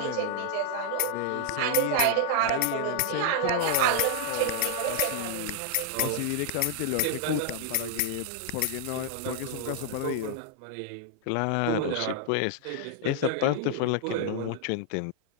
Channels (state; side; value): different; both; correlation 0.00